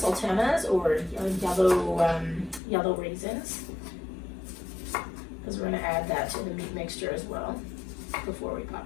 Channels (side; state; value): right; drops out; at 2.6 s